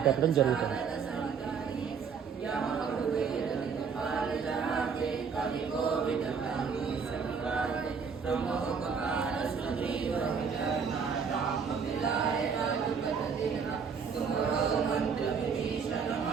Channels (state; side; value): quieter; left; 6.1 dB